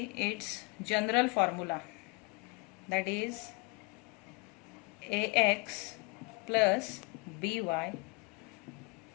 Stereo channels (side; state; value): right; quieter; 27.6 dB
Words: its general formula, that is ax plus by